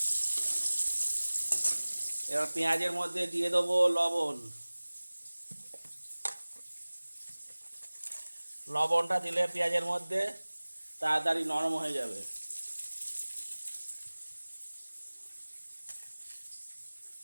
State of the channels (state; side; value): inverted; both; correlation -1.00